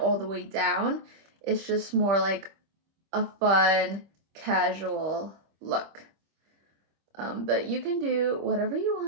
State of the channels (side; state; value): left; late; 25 ms